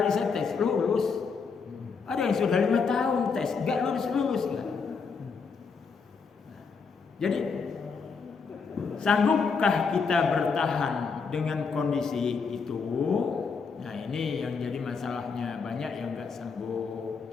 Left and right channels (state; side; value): quieter; right; 5.3 dB